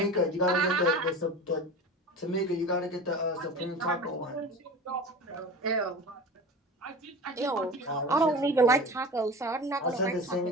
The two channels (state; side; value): normal; both; correlation 0.34